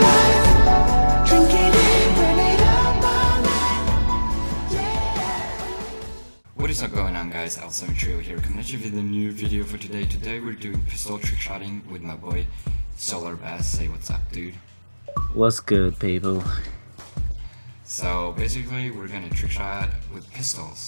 life. Drink it in, burn it up all night. Yeah. What is up going on, guys? Awesome Trio here, coming at you with a new video for today. Today we're doing pistol trick shotting with my boy Solar Bass. Say what's up, dude. What's good, people? So basically we're gonna trick shot with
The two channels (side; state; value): both; inverted; correlation -1.00